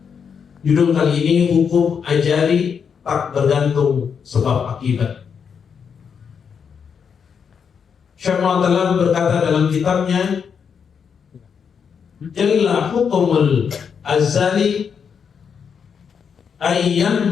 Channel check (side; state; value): right; quieter; 6.8 dB